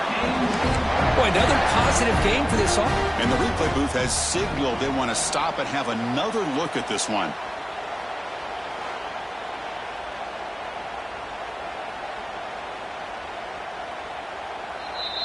Boy, another positive game for this offense. And the replay booth has signaled they want to stop and have another look at this one.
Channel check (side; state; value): both; identical; correlation 1.00